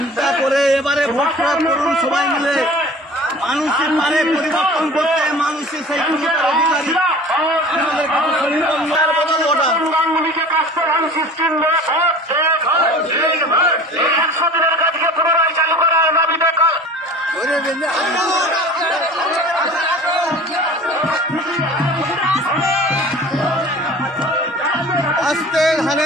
করে এবারে ভোট করুন সবাই মিলে। মানুষের পারে পরিবর্তন করতে, মানুষের সেই অধিকারী আমাদের বদল ওটা আস্তে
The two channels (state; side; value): normal; both; correlation 0.42